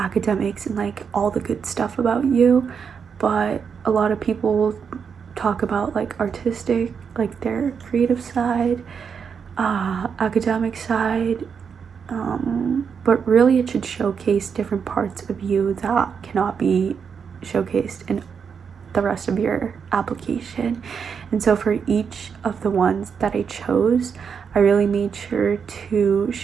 and all the good stuff about you, but a lot of people talk about artistic, their creative side, academic side, but really it should showcase different parts of you that cannot be showcased in the rest of your application. And so for each of the ones that I chose, I really made sure to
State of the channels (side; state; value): left; quieter; 6.5 dB